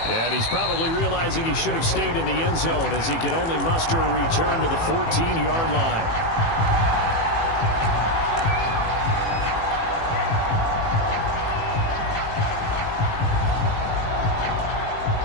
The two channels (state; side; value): late; right; 18 ms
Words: And he's probably realizing he should have stayed in the end zone, as he can only muster a return to the 14-yard line.